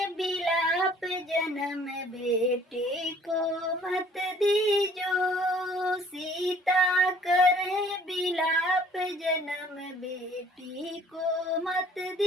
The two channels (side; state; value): both; normal; correlation 0.55